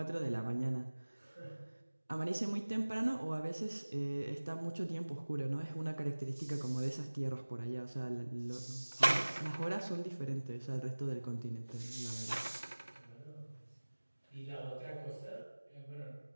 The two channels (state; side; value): inverted; both; correlation -1.00